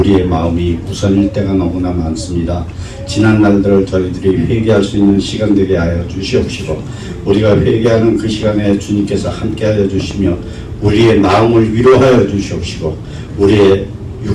마음이 우선일 때가 너무나 많습니다. 지난 날들을 저희들이 회개할 수 있는 시간 되게 하여 주시옵시고 우리가 회개하는 그 시간에 주님께서 함께하여 주시며 우리의 마음을 위로하여 주시옵시고 우리의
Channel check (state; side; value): identical; both; correlation 1.00